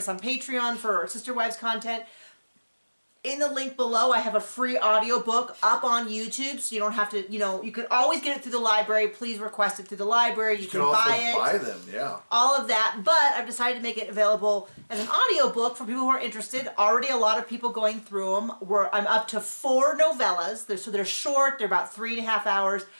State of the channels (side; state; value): both; inverted; correlation -1.00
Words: on Patreon for our Sister Wives content. In the link below, I have a free audiobook up on YouTube, so you don't have to, you can always get it through the library. Please request it through the library. You can buy it. buy them, yeah. All of that, but I've decided to make it available as an audiobook for people who are interested. Already a lot of people going through them. I'm up to 4 novellas, so they're short, they're about 3.5 hours.